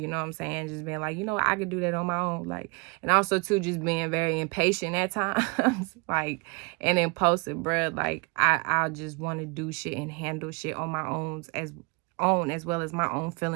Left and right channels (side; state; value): left; quieter; 30.3 dB